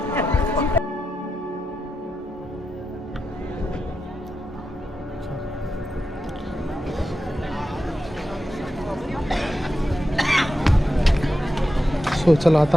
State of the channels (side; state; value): both; normal; correlation 0.89